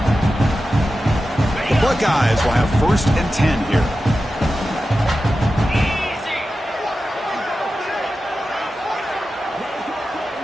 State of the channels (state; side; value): normal; both; correlation 0.92